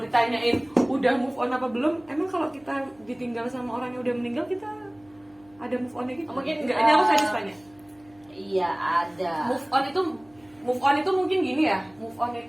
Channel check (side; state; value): right; noise; hum, 30 dB below the sound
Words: udah move on apa belum, emang kalau kita ditinggal sama orang yang udah meninggal kita ada move onnya gitu? Mungkin enggak. Ini aku sadis tanya. Iya ada. Move on itu mungkin gini ya. Move on